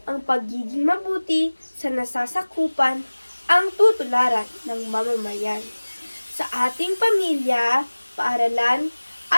Ang pagiging mabuti sa nasasakupan ang tutularan ng mamamayan. Sa ating pamilya, paaralan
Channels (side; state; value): both; inverted; correlation -1.00